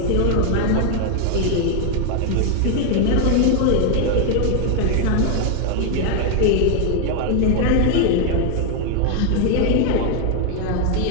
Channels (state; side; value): different; both; correlation 0.01